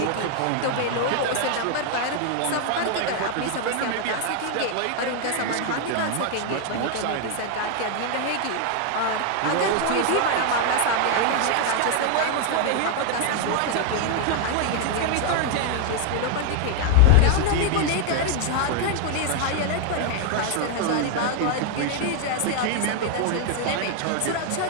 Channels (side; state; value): both; different; correlation 0.00